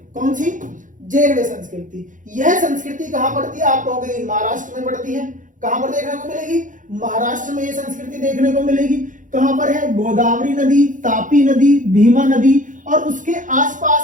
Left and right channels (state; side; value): late; left; 0.38 ms